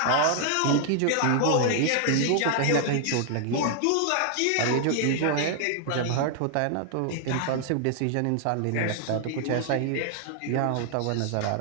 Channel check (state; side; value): different; both; correlation 0.00